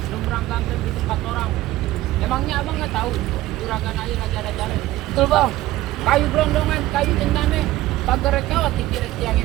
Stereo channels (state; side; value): quieter; left; 16.3 dB